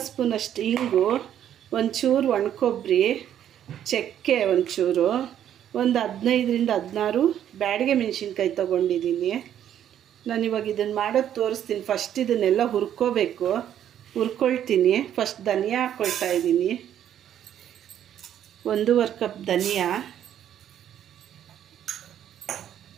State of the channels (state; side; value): quieter; left; 10.4 dB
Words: ಸ್ಪೂನಷ್ಟು ಇಂಗು, ಒಂಚೂರು ಒಣಕೊಬ್ಬರಿ, ಚಕ್ಕೆ ಒಂಚೂರು, ಒಂದು 15ರಿಂದ 16 ಬ್ಯಾಡಿಗೆ ಮೆಣಸಿನ್ಕಾಯಿ ತೊಗೊಂಡಿದ್ದೀನಿ. ನಾನಿವಾಗ ಇದನ್ನು ಮಾಡೋದು ತೋರಿಸ್ತೀನಿ. ಫಸ್ಟ್ ಇದನ್ನೆಲ್ಲ ಹುರ್ಕೊಳ್ತೀನಿ. ಫಸ್ಟ್ ಧನಿಯಾ ಹಾಕ್ಕೊಳ್ತಾ ಇದ್ದೀನಿ. 1.5 ಕಪ್ ಧನಿಯಾ,